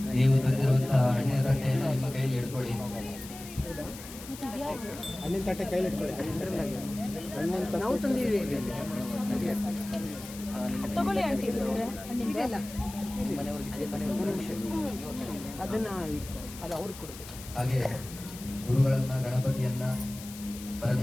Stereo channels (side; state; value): left; noise; hiss, 14 dB below the sound